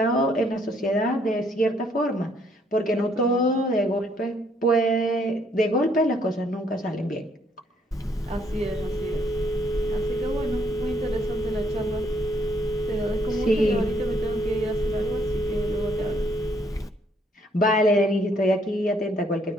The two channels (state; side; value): normal; both; correlation 0.68